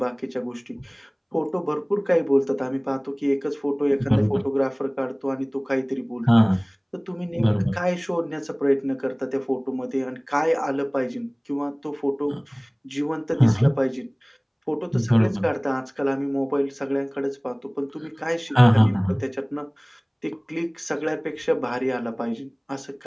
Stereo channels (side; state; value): both; identical; correlation 1.00